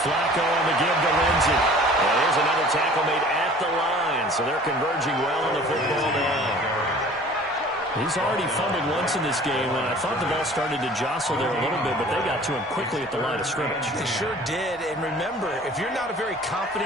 Flacco on the give to Lindsey. Well, there's another tackle made at the line. So they're converging well on the football now. He's already fumbled once in this game, and I thought the ball started to jostle there a little bit, but they got to him quickly at the line of scrimmage. They sure did, and remember, if you're not a very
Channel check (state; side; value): normal; both; correlation 0.48